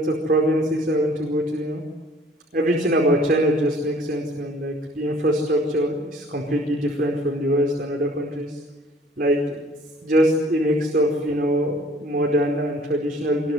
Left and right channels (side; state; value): both; normal; correlation 0.54